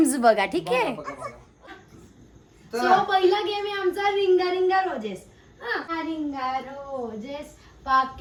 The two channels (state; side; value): identical; both; correlation 1.00